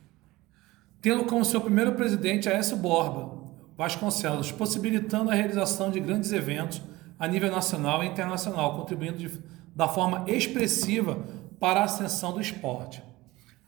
tendo como seu primeiro presidente Aécio Borba Vasconcelos, possibilitando a realização de grandes eventos a nível nacional e internacional, contribuindo da forma expressiva para a ascensão do esporte.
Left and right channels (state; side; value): quieter; left; 19.5 dB